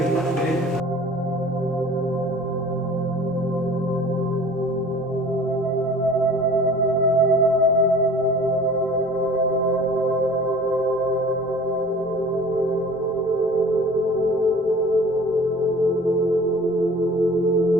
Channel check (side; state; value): both; normal; correlation 0.45